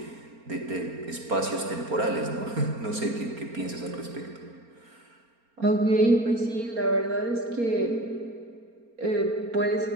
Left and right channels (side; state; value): left; late; 4.3 ms